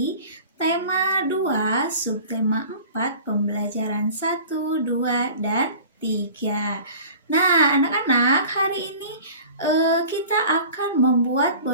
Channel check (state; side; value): inverted; both; correlation -0.42